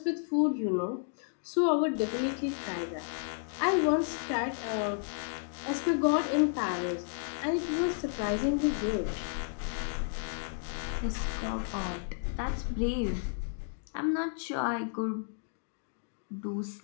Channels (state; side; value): silent; right; digital silence